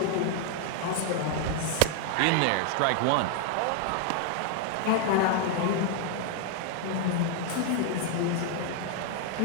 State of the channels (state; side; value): different; both; correlation 0.00